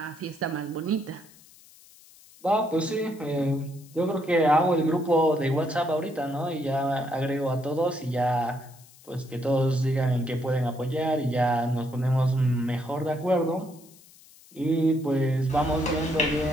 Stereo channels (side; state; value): left; noise; hiss, 24 dB below the sound